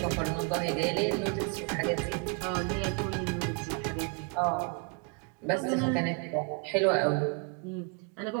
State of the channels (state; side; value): quieter; left; 35.8 dB